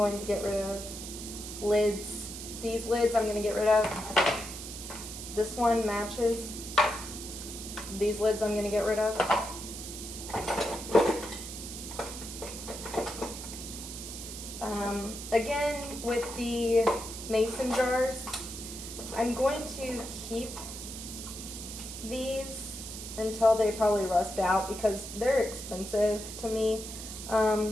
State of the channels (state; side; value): noise; right; hiss, 9 dB below the sound